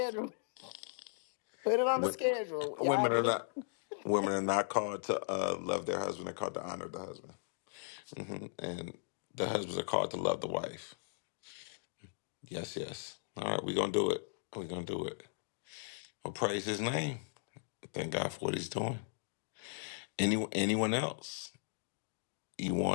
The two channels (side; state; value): right; silent; digital silence